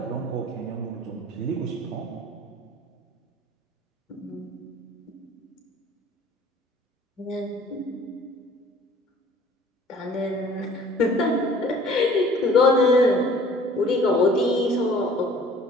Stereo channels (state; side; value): normal; both; correlation 0.52